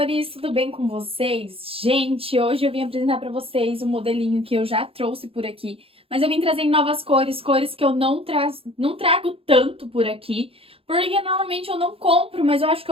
tudo bem com vocês? Gente, hoje eu vim apresentar para vocês um modelinho que eu já trouxe por aqui, mas eu vim trazer em novas cores, cores que eu não trago tanto por aqui, porque normalmente eu não compro, mas eu acho que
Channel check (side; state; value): left; late; 0.27 ms